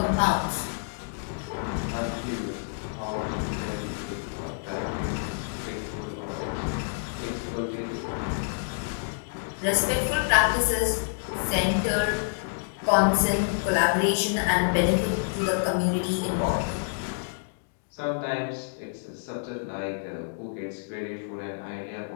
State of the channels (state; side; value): silent; right; digital silence